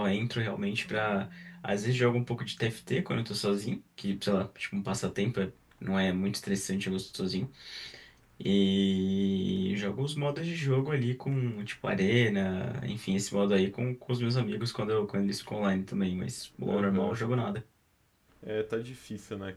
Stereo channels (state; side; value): identical; both; correlation 1.00